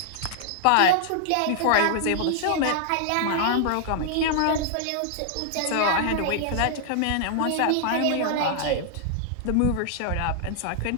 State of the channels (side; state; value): both; different; correlation -0.01